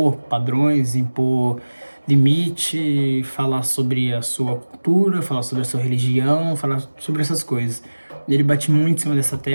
padrões, impor limite, falar sobre a sua cultura, falar sobre a sua religião, falar sobre essas coisas. Ele bate muito em cima dessa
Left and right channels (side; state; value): both; inverted; correlation -1.00